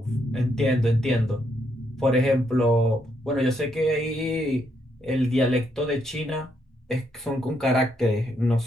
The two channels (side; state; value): both; normal; correlation 0.76